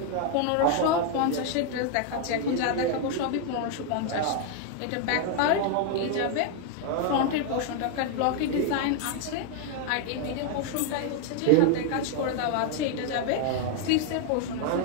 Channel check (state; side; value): different; both; correlation 0.01